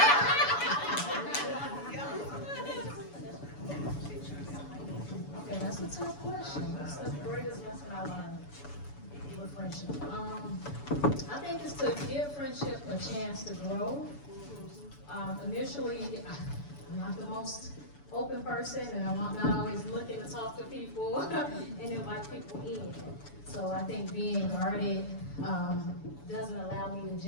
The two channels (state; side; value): late; right; 7.0 ms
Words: Okay, that's a tough question. What's the greatest lesson I learned with friendship? I think it's to give friendship a chance to grow. Initially, I'm not the most open person, and I'm not always looking to talk to people and invite people in. So I think being guarded doesn't allow me to